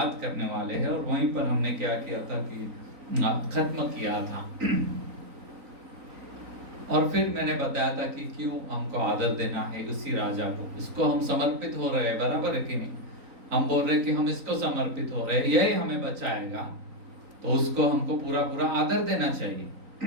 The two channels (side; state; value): left; late; 3.9 ms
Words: करने वाले हैं और वहीं पर हमने क्या किया था कि खत्म किया था। और फिर मैंने बताया था कि क्यों हमको आदर देना है उसी राजा को, उसको हम समर्पित हो रहे हैं, बराबर है कि नहीं। हम बोल रहे हैं कि हम इसको समर्पित हो रहे हैं, यही हमें बचाएगा, तो उसको हमको पूरा पूरा आदर देना चाहिए।